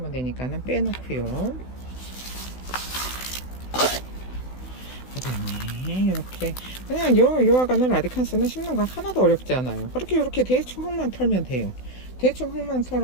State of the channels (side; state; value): right; late; 16 ms